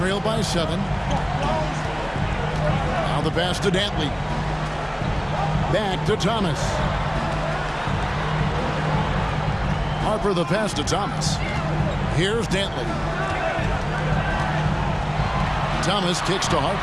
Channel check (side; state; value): both; identical; correlation 1.00